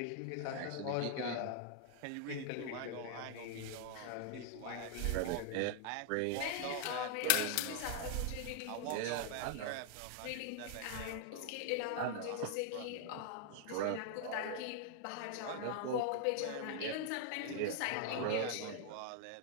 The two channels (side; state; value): both; different; correlation 0.00